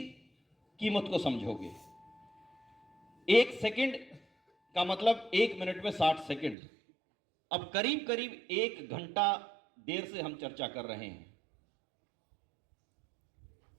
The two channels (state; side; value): drops out; left; at 6.6 s